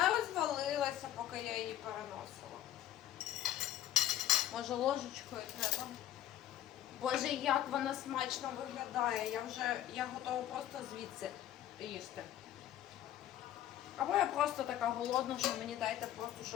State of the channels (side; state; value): right; quieter; 12.3 dB